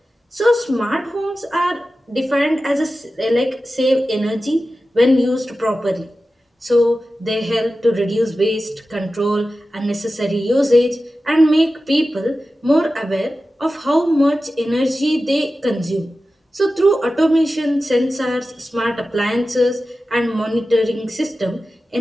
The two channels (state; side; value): normal; both; correlation 0.94